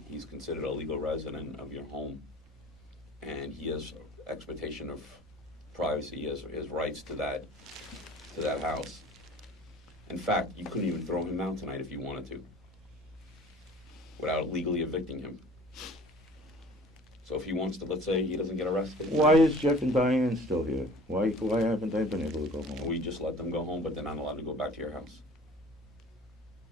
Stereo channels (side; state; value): both; normal; correlation 0.47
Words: He's considered a legal resident of your home, and he has expectation of privacy. He has rights to that house. In fact, you couldn't even throw him out tonight if you wanted to, without legally evicting him. So if he wants to, let's say he doesn't get arrested. Why is Jeff and Diane still here? Why haven't they been able to go home? We just let them go home, but they're not allowed to go back to your house.